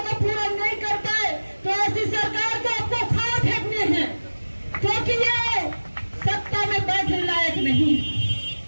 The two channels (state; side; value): inverted; both; correlation -1.00